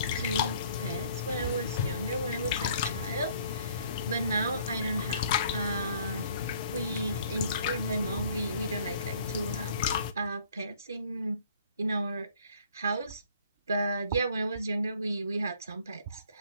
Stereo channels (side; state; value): both; inverted; correlation -0.58